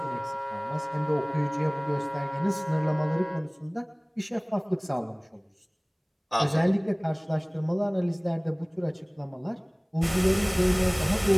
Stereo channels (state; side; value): identical; both; correlation 1.00